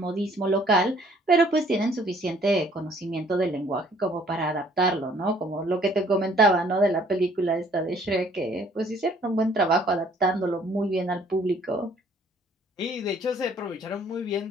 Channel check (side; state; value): both; normal; correlation 0.60